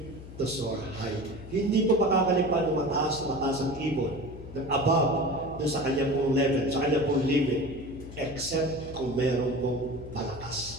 to soar high. Hindi po makakalipan ng mataas ang ibon ng above doon sa kanyang pong level, sa kanyang pong limit, except kung meron pong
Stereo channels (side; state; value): left; noise; hum, 14 dB below the sound